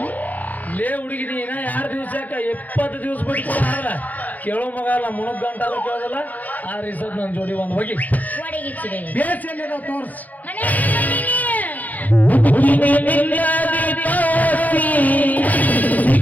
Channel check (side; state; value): right; late; 0.080 ms